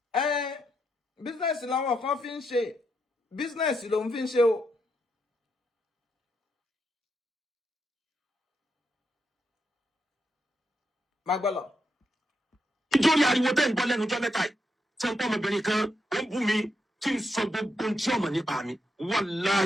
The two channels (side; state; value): both; normal; correlation 0.81